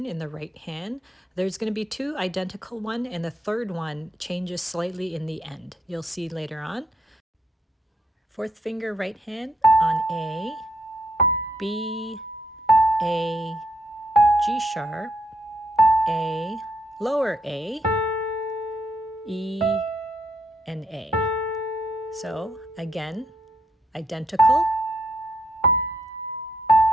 in the right hand. There's going to be 2 identical ones, and the third one changes slightly in the end. You'll see later on. 4th finger right hand on A, B, A, G sharp, A, lower A, E, and A. So again, identical.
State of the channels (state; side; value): normal; both; correlation 0.73